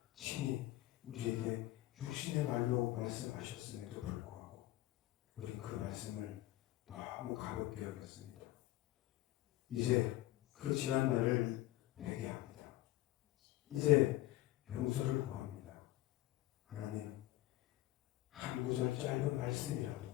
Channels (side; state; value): right; quieter; 16.2 dB